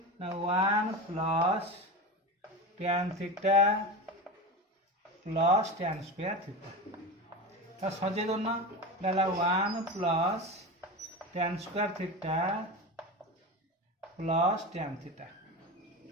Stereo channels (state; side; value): normal; both; correlation 0.24